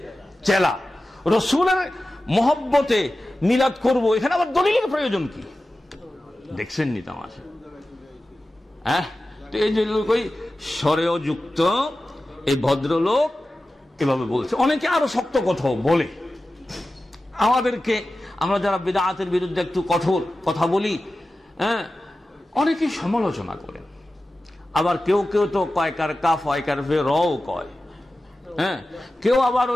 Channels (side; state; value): both; normal; correlation 0.94